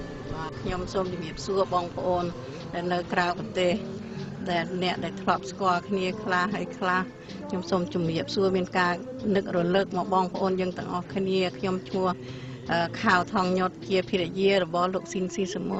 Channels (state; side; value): identical; both; correlation 1.00